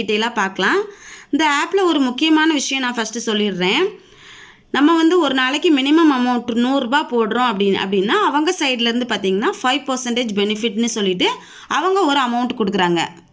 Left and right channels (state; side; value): identical; both; correlation 1.00